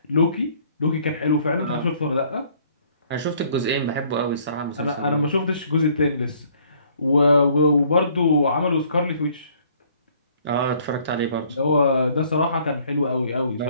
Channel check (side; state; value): both; inverted; correlation -0.60